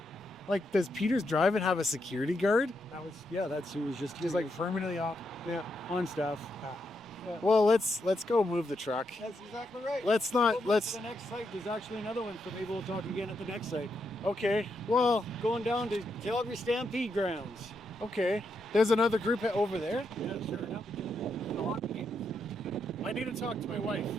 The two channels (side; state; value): right; noise; rumble, 29 dB below the sound